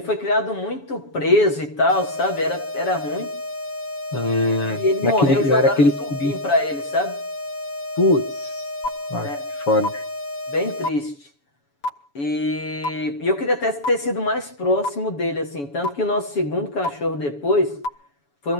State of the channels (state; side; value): late; right; 7.1 ms